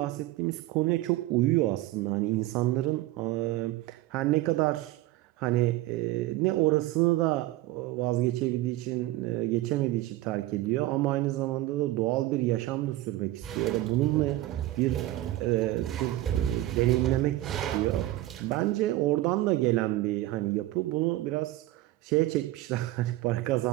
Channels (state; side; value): quieter; left; 16.4 dB